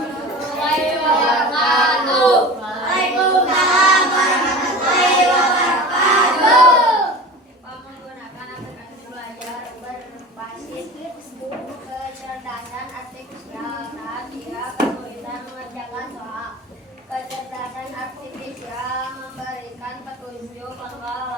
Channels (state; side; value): normal; both; correlation 0.35